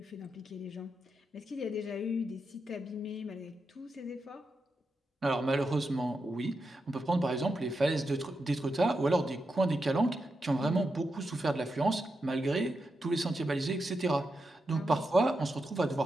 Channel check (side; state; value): both; normal; correlation 0.86